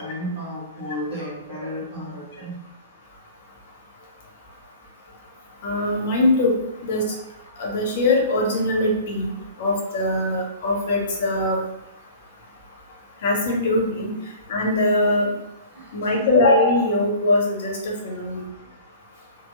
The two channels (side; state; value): both; inverted; correlation -0.44